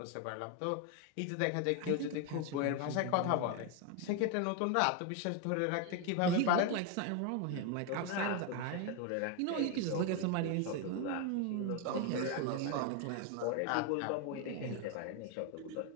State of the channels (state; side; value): different; both; correlation 0.01